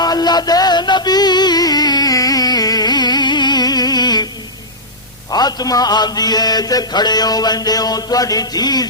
اللہ دے نبی فاطمہ آندی ہے تے کھڑے ہو ویندے ہو تواڈی دھی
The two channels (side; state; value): both; normal; correlation -0.11